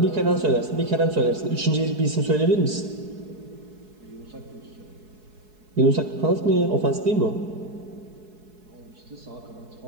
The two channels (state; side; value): late; left; 4.7 ms